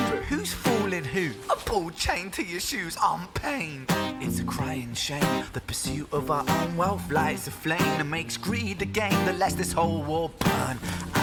who's fooling who. A ball chained to your shoes on pain. It's a crying shame. The pursuit of our own wealth lights a flame that makes greed a game that lets this whole world burn.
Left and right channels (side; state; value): both; identical; correlation 1.00